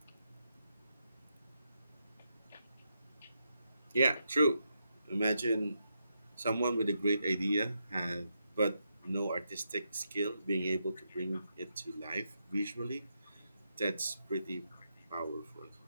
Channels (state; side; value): inverted; both; correlation -0.82